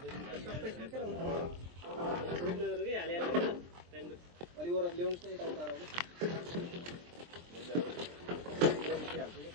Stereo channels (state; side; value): late; left; 23 ms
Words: अलिक वर ल्याउनुहोस् न यता उता